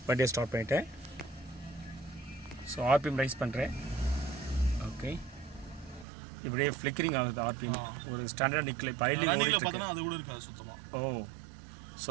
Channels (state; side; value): drops out; left; at 6.1 s